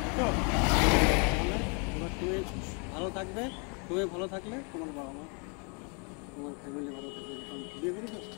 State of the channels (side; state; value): right; quieter; 35.7 dB